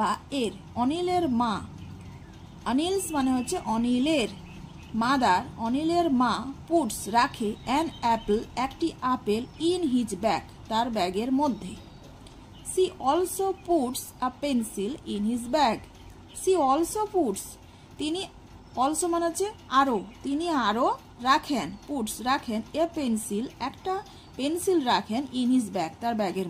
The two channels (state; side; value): identical; both; correlation 1.00